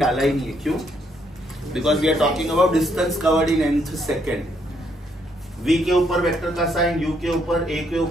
ही नहीं है. क्यों? Because we are talking about distance covered in nth second. V के ऊपर वेक्टर का साइन, U के ऊपर, A के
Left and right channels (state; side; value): normal; both; correlation 0.73